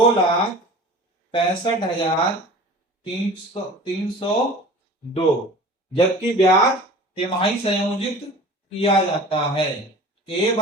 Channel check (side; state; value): both; normal; correlation 0.41